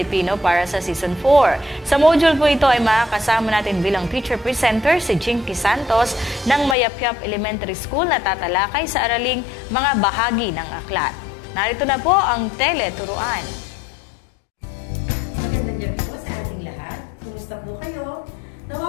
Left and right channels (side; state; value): right; drops out; at 6.8 s